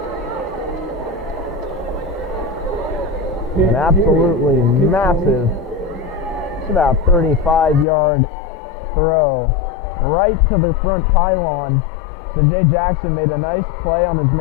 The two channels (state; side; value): drops out; right; at 7.9 s